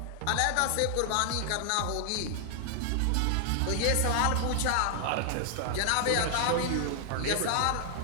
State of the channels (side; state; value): both; different; correlation -0.01